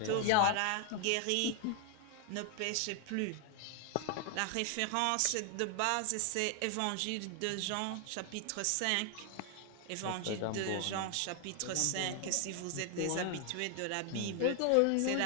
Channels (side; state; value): both; different; correlation 0.01